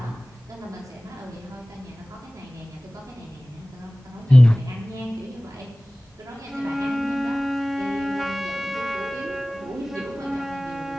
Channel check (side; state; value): both; normal; correlation 0.98